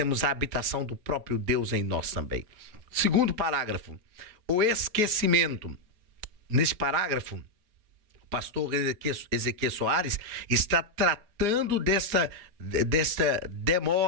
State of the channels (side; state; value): left; late; 4.8 ms